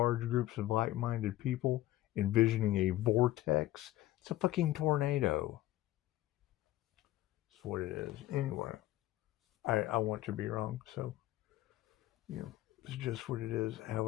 groups of like-minded people envisioning a vortex, it's a fucking tornado. That's what it is. Anyway, I want to be wrong, so, it's just what it is.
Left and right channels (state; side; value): quieter; right; 15.3 dB